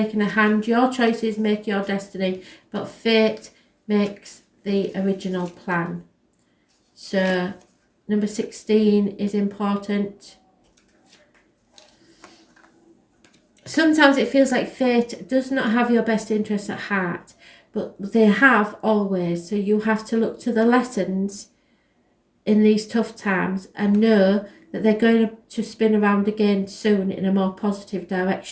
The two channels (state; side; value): identical; both; correlation 1.00